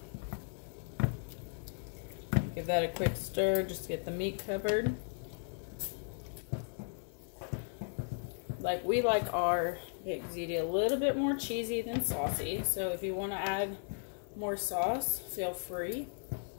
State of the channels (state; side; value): silent; right; 54 dB below the other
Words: Give that a quick stir just to get the meat covered. Like, we like our baked ziti a little bit more cheesy than saucy, so if you want to add more sauce, feel free.